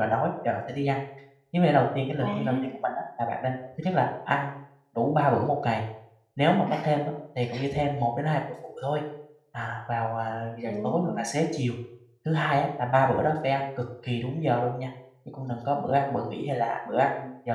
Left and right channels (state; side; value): identical; both; correlation 1.00